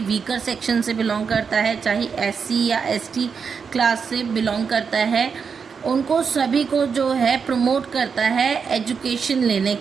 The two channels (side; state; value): left; quieter; 6.0 dB